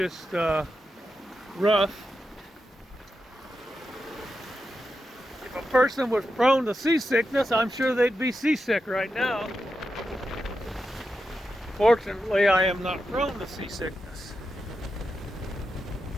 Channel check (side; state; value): both; normal; correlation 0.88